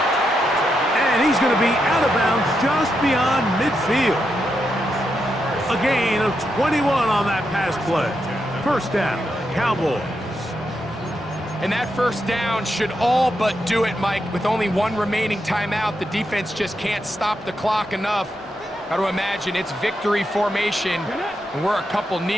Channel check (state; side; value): normal; both; correlation 0.84